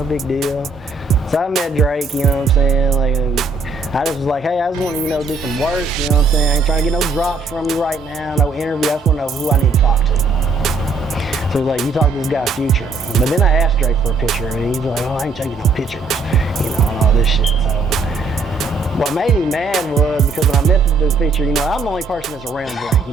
big deal. So I met Drake, you know what I'm saying, like, I just was like, hey, I just want to, you know, do some work, you know what I'm saying, I ain't trying to get no drops from you right now, no interview, I just want to know who I need to talk to. So he's like, you talk to this guy Future. But then I asked Drake for a picture, and he's like, oh, I ain't taking no pictures, you know, and all this shit. So what made me mad was because when I met the dude Future, you know, I'm the only person that's around Drake.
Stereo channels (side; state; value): left; quieter; 3.8 dB